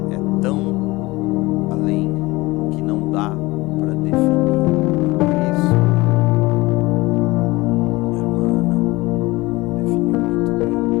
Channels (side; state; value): right; quieter; 21.4 dB